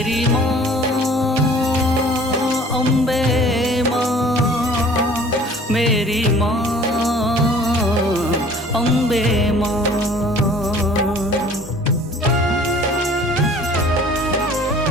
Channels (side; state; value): both; normal; correlation 0.50